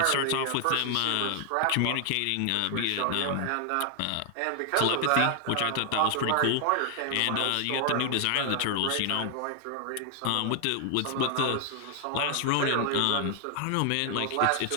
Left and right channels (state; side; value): different; both; correlation 0.00